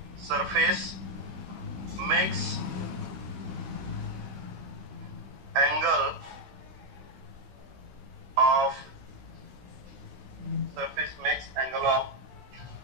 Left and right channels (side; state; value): left; late; 16 ms